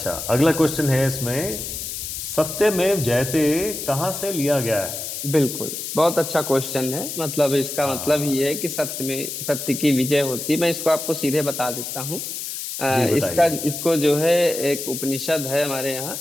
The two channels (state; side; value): noise; left; hiss, 6 dB below the sound